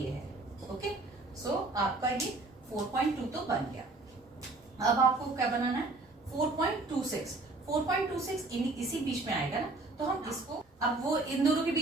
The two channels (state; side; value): quieter; left; 3.2 dB